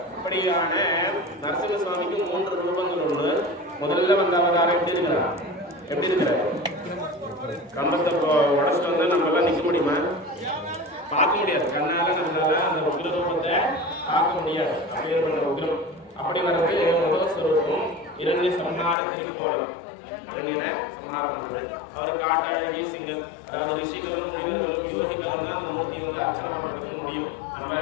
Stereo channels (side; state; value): right; drops out; at 18.9 s